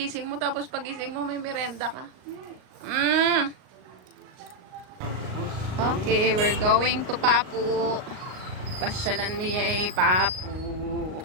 mo tapos pagising mo may merenda ka. Okay, we're going to Papu. Pasyalan mo Papu.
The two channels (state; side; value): late; left; 38 ms